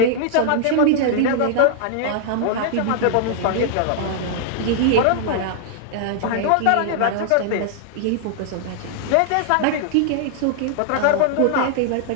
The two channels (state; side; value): different; both; correlation -0.01